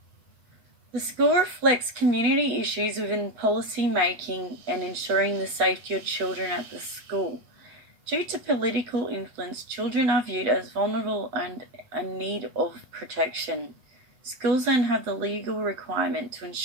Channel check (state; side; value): late; left; 7.9 ms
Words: The school reflects community issues within policy making and ensuring the safety of children at the school. Due to political influence, children are viewed as vulnerable and in need of protection. Schools then have the legal requirement to